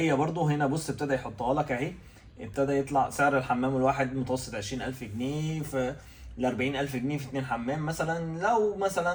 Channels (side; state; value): both; identical; correlation 1.00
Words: برضه هنا بص ابتدى يحطها لك اهي. ابتدى يطلع سعر الحمام الواحد متوسط 20000 جنيه في ل 40000 جنيه في 2 حمام مثلا. لو